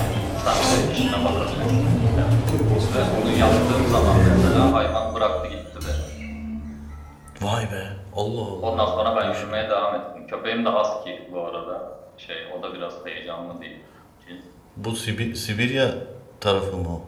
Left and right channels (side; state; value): both; identical; correlation 1.00